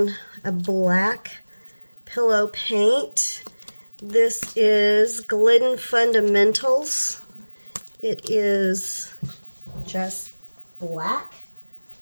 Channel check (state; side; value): inverted; both; correlation -1.00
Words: a black pillow paint. This is Glidden Fundamentals. It is just black.